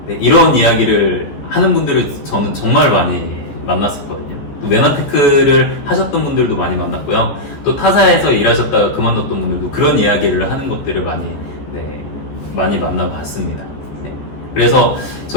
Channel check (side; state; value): right; late; 14 ms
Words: 네, 이런 이야기를 하는 분들을 저는 정말 많이 만났었거든요. 또 메나테크를 하셨던 분들도 많이 만났고요. 또 타사에서 일하셨다가 그만뒀던 분들도 그런 이야기를 하는 것들을 많이 만나봤습니다. 네. 그래서